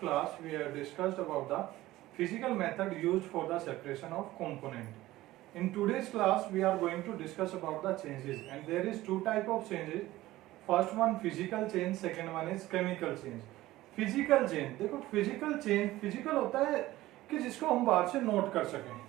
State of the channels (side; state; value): left; quieter; 16.7 dB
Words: we have discussed about the physical method used for the separation of component. In today's class we are going to discuss about the changes and there is two type of changes. First one physical change, second one is chemical change. Physical change देखो फिजिकल चेंज फिजिकल होता है कि जिसको हम बाहर से नोट कर सकें,